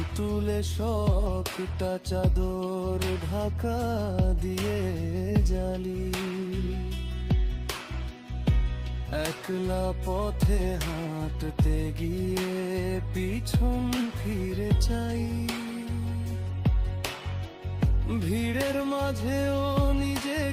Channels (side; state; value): both; identical; correlation 1.00